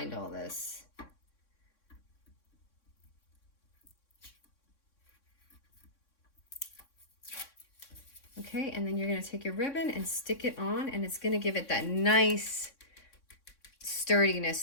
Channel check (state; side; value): late; right; 3.6 ms